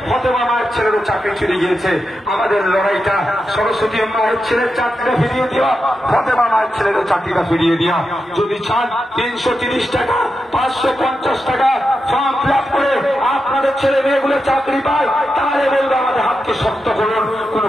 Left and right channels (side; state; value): both; normal; correlation 0.88